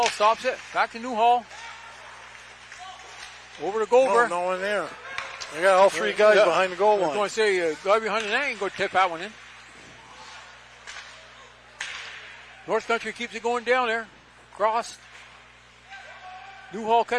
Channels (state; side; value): identical; both; correlation 1.00